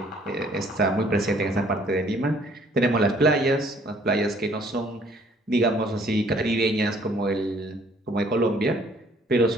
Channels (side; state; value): both; normal; correlation 0.60